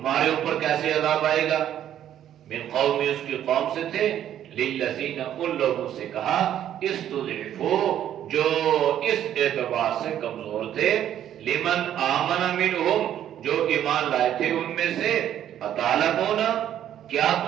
اوپر کیسے عذاب آئے گا؟ من قومی، اس کی قوم سے تھے، للذین، ان لوگوں سے کہا، استضعفوا، جو اس اعتبار سے کمزور تھے، لمن آمن منہم، جو ایمان لائے تھے ان میں سے، اتعلمون، کیا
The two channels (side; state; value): left; quieter; 10.8 dB